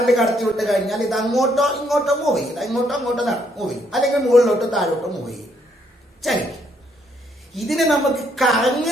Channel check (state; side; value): normal; both; correlation 0.71